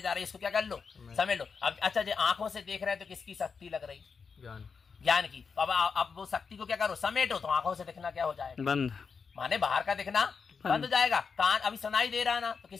जा रही है इसको क्या कर लो? समेट लो। अब अच्छा जो आंखों से देख रहे हैं तो किसकी शक्ति लग रही? ज्ञान की। अब वो शक्ति को क्या करो? समेटो। तो आंखों से दिखना क्या हो जाएगा? बंद। माने बाहर का दिखना बंद हो जाएगा। कान अभी सुनाई दे रहा ना, तो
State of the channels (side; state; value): right; quieter; 5.6 dB